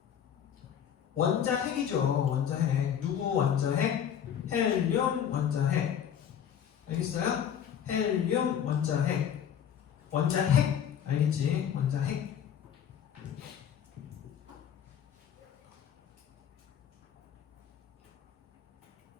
원자핵이죠. 원자핵. 누구 원자핵? 헬륨 원자핵. 알겠어요? 헬륨 원자핵. 원자핵 알겠지? 원자핵.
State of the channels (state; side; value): quieter; right; 8.9 dB